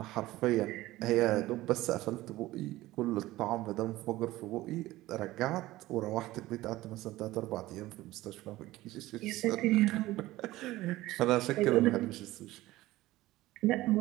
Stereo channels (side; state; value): left; quieter; 17.3 dB